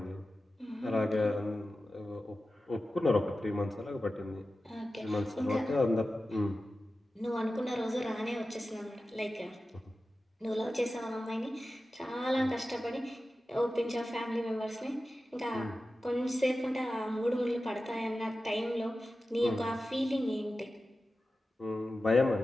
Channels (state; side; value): normal; both; correlation 0.94